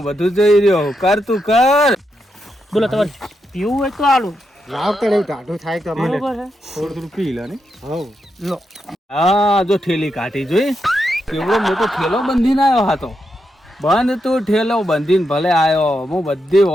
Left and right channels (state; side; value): normal; both; correlation 0.84